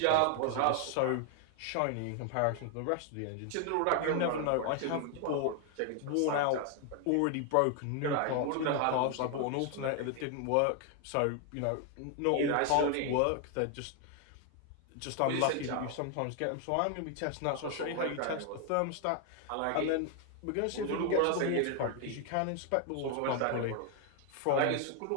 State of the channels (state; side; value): different; both; correlation 0.00